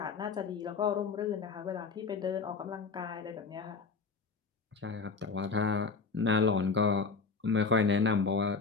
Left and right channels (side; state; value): right; quieter; 4.7 dB